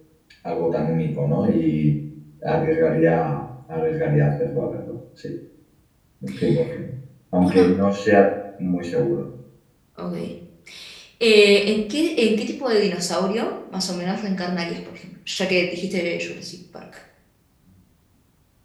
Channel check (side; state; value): both; identical; correlation 1.00